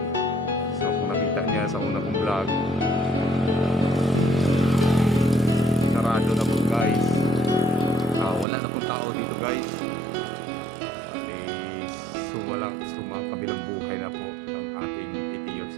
So kung nakita niya sa una kong vlog, sarado na po guys. Wala na pong tao dito guys. Kabilang buhay na po ang ating 80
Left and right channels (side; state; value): left; drops out; at 8.5 s